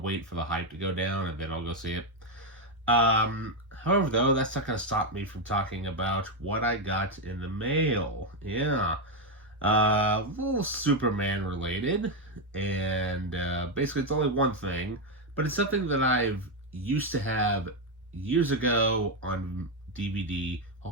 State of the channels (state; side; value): normal; both; correlation 0.05